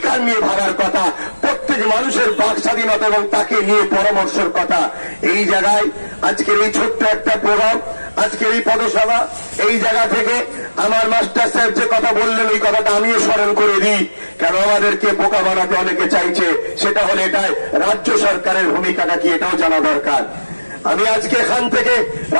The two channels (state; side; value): inverted; both; correlation -1.00